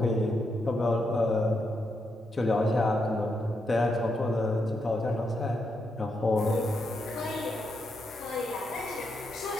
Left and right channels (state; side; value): normal; both; correlation 0.82